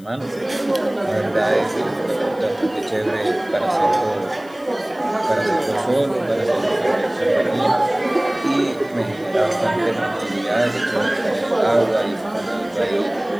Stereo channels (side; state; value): left; noise; hiss, 27 dB below the sound